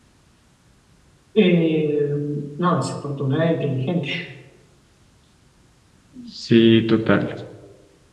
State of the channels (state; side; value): identical; both; correlation 1.00